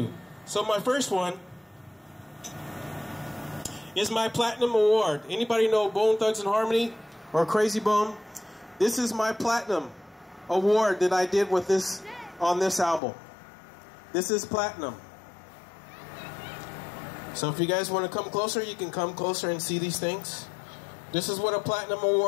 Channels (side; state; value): right; drops out; at 13.0 s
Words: So my first one is my Platinum Award. Anybody know Bone Thugs-n-Harmony or Crazy Bone? This is my Platinum Award that I did with on this album. This is Platinum. So if you guys want to come closer, you can come closer and see these things. This is what a Platinum